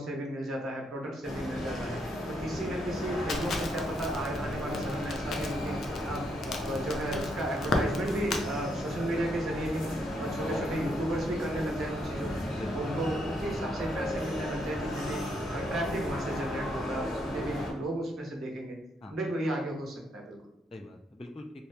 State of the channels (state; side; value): normal; both; correlation 0.75